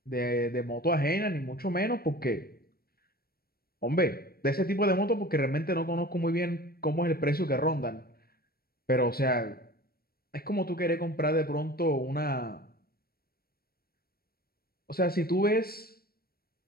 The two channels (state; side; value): late; right; 0.44 ms